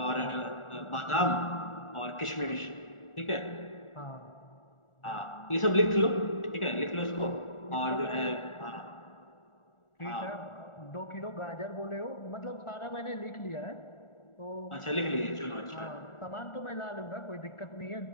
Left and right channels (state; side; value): late; right; 1.4 ms